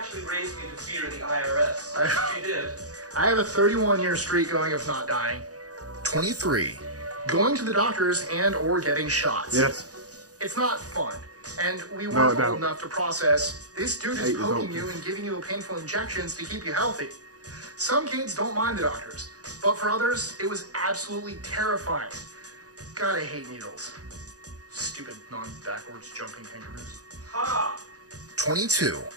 raised me to fear the IRS. She did. I have a 31-year streak going of not dying. 23. Going to the doctors and or getting shots. Yes. It's not fun. And we weren't old enough to process, this dude is poking you and giving you painful injections to keep you healthy. Some kids don't mind the doctors, but for others, it was absolutely terrifying. God, I hate needles. Stupid non-backwards jumping kangaroos. Ha! 22.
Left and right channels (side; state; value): left; late; 0.67 ms